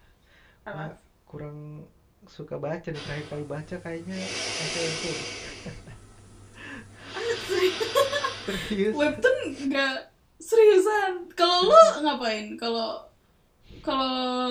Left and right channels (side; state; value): both; identical; correlation 1.00